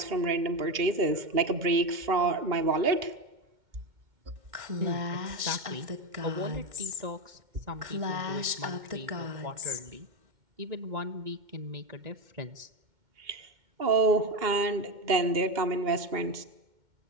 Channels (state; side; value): late; left; 2.1 ms